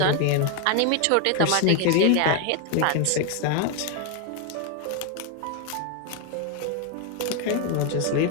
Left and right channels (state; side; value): different; both; correlation 0.01